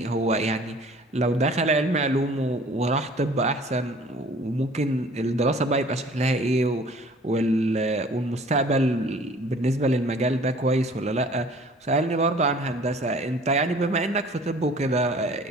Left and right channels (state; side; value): normal; both; correlation 0.50